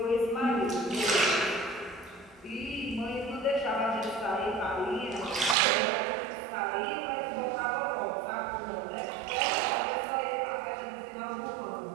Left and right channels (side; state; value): left; drops out; at 5.6 s